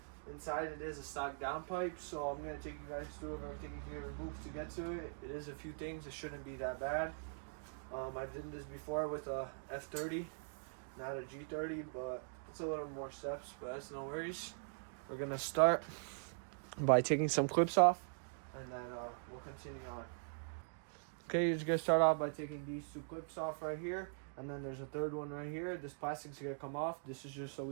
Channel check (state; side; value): silent; left; digital silence